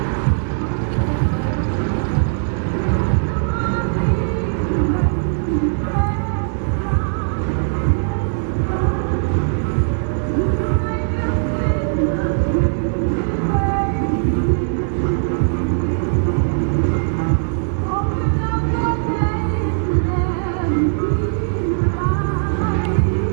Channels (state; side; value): silent; left; digital silence